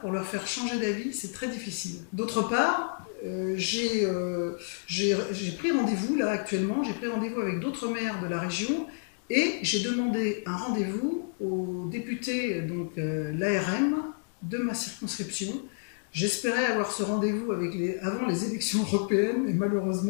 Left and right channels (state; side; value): silent; right; digital silence